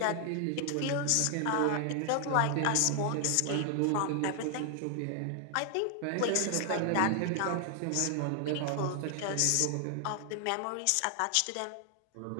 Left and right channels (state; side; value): different; both; correlation 0.00